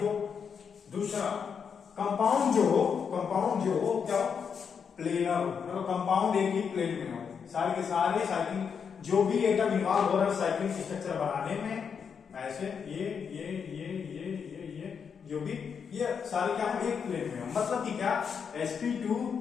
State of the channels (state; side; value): quieter; right; 6.6 dB